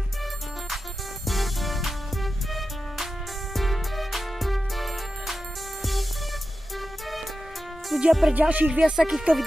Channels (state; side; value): normal; both; correlation 0.92